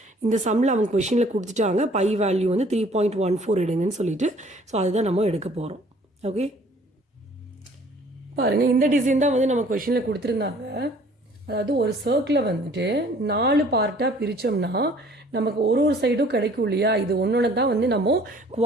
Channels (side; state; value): both; normal; correlation 0.55